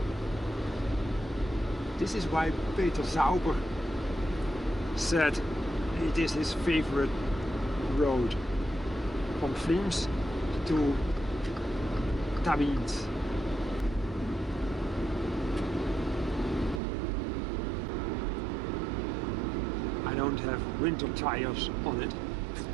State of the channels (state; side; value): drops out; left; at 16.8 s